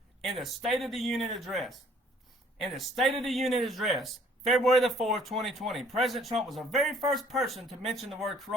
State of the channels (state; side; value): normal; both; correlation 0.59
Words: in the State of the Union address. In the State of the Union address, February the 4th, 2020, President Trump was the very first person to mention the word